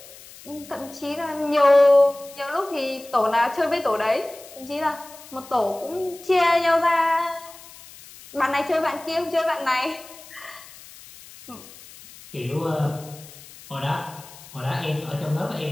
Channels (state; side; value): noise; left; hiss, 19 dB below the sound